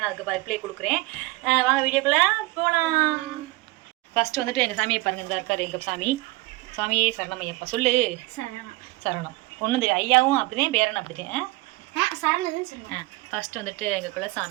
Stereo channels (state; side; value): quieter; left; 21.0 dB